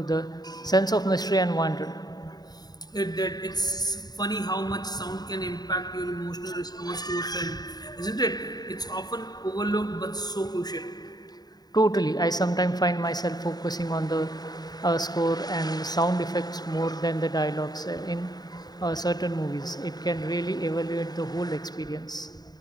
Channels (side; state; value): right; late; 0.19 ms